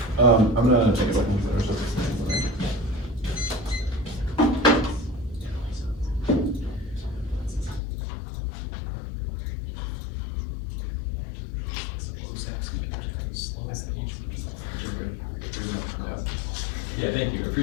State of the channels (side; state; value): right; drops out; at 7.8 s